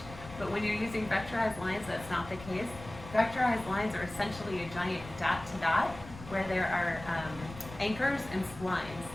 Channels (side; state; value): left; noise; rumble, 15 dB below the sound